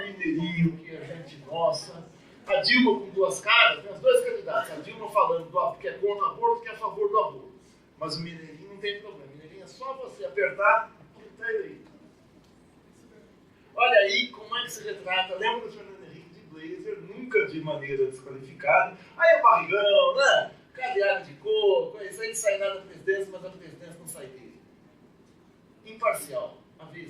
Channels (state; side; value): identical; both; correlation 1.00